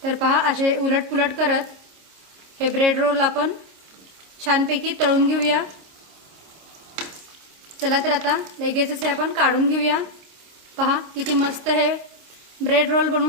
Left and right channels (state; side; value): late; left; 26 ms